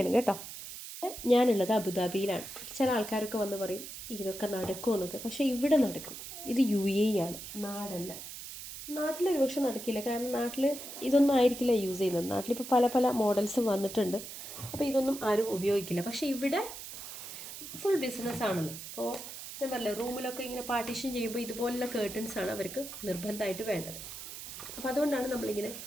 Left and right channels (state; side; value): noise; right; hiss, 10 dB below the sound